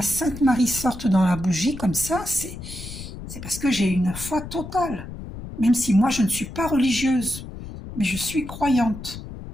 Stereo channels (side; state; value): left; noise; rumble, 11 dB below the sound